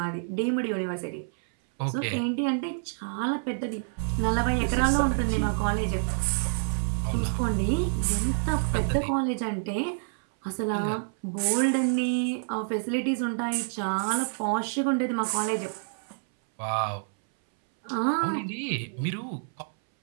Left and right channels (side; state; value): left; silent; 60 dB below the other